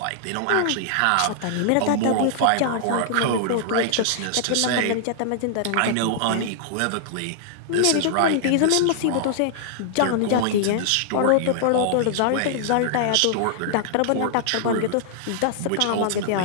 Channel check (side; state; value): both; different; correlation -0.01